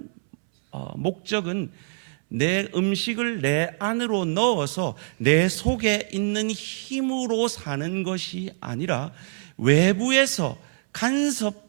목적은 내 음식을 내 안으로 넣어서 내 속에 있는 힘으로 사는 것이 아니라 외부에서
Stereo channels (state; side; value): silent; left; 62 dB below the other